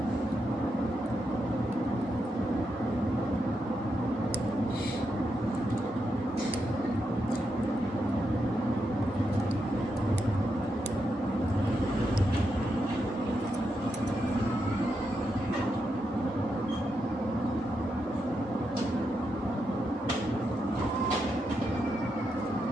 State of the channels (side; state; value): both; normal; correlation 0.84